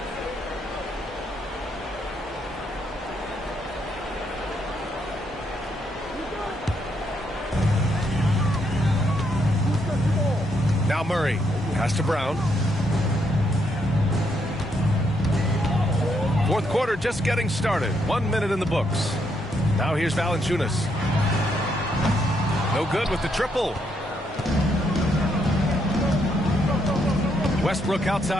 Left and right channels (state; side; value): normal; both; correlation 0.76